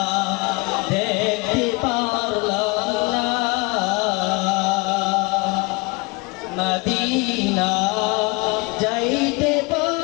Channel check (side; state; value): right; quieter; 27.0 dB